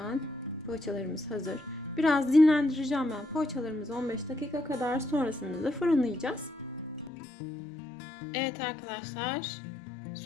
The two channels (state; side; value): drops out; right; at 7.1 s